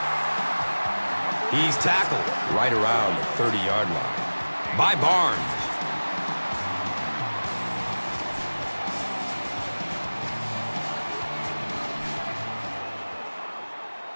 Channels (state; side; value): inverted; both; correlation -1.00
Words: He's tackled right around the 30-yard line by Barnes.